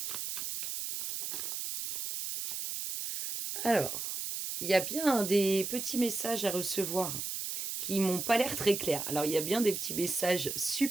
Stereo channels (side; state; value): right; noise; hiss, 4 dB below the sound